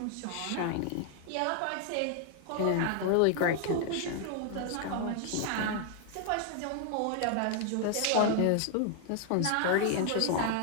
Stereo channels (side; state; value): both; different; correlation 0.00